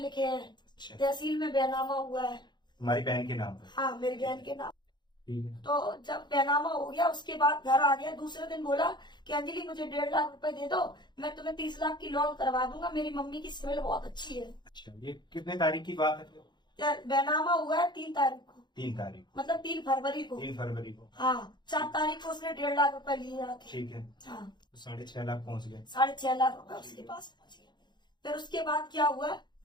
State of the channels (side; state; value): right; late; 0.21 ms